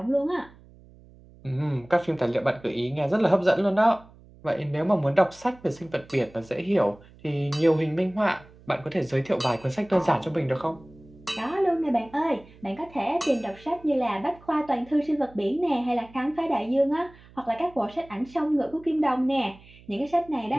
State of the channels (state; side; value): noise; right; hum, 24 dB below the sound